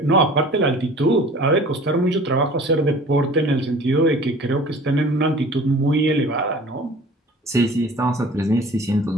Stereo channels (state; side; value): normal; both; correlation 0.45